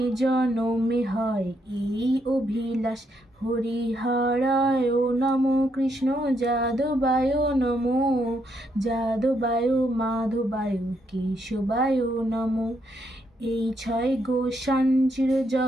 জনমে হয় এই অভিলাষ। হরিহরায় নমো কৃষ্ণ যাদবায় নমো, যাদবায় মাধবায় কেশবায় নমো। এই ছয় গোসান চির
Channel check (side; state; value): both; normal; correlation 0.76